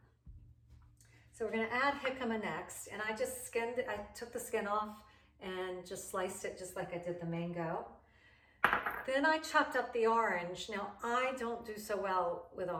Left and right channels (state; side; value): identical; both; correlation 1.00